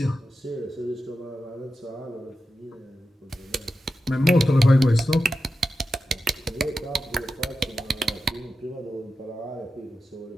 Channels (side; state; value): both; normal; correlation 0.90